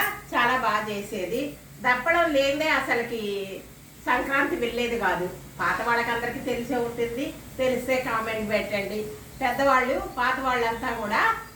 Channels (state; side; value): identical; both; correlation 1.00